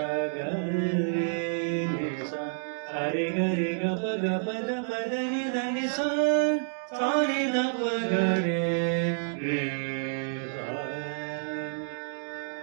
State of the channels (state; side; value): silent; left; digital silence